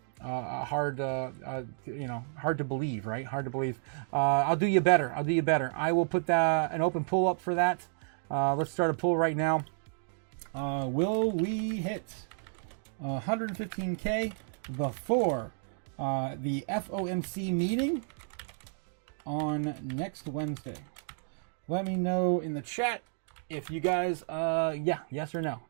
to believe, right? Hard to believe. I'll do you better. I will put an open pull up for that. Let's start a poll right now. Will we hit 115K before the FOMC meeting on next Wednesday? Let me know in the chat if you guys, yes or no.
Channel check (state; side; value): silent; left; digital silence